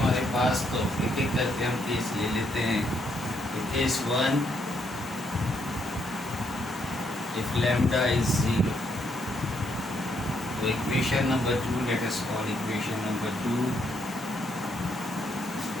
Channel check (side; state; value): both; normal; correlation 0.74